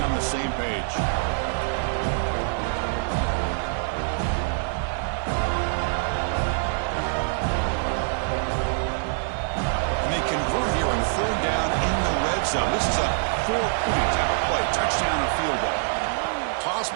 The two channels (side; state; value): left; silent; 62 dB below the other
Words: the same page. And they convert here on 3rd down in the red zone. This is a 4-point type of play. Touchdown or field goal. Toss